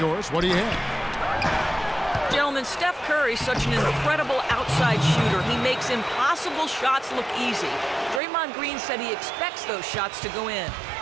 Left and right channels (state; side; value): drops out; left; at 8.2 s